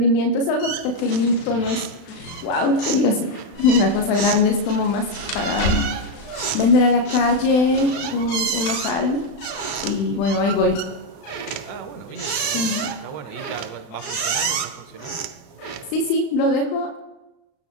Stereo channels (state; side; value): late; right; 35 ms